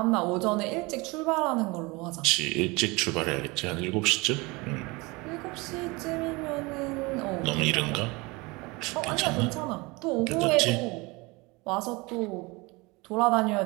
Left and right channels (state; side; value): quieter; left; 24.9 dB